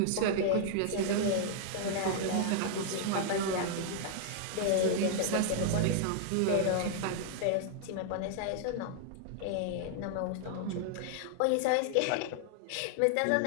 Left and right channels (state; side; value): different; both; correlation -0.01